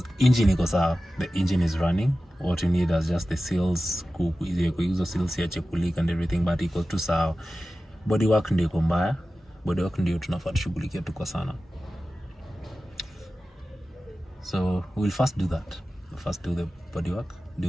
engine iko sawa, the engine is running. What you need is just the seals, kuizo seals ya chekulik and everything, but iko tu sawa. Body work ndio iko mbaya. Body work ndio tunafaa tushughulikia tu kwa sana. So we'll first do that. We'll first do the body work,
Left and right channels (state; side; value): normal; both; correlation 0.95